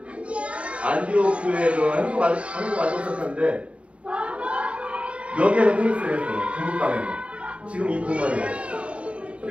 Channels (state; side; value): late; left; 0.062 ms